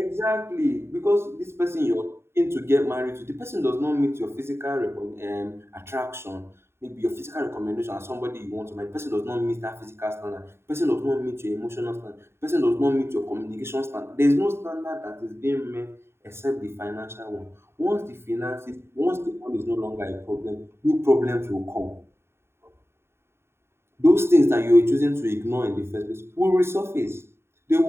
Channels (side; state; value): left; late; 0.12 ms